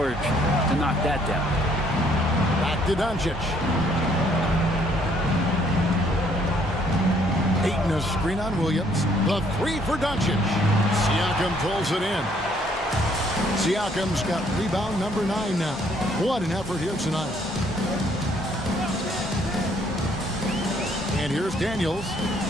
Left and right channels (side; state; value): both; normal; correlation 0.65